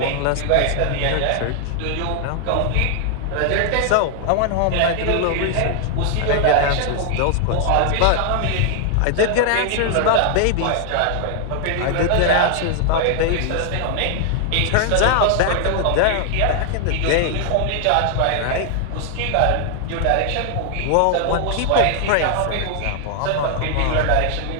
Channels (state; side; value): different; both; correlation 0.00